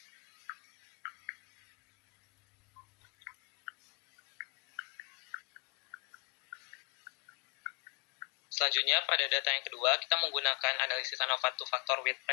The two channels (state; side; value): quieter; right; 36.4 dB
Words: Selanjutnya, pada data yang kedua, kita menggunakan analisis ANOVA two-factor with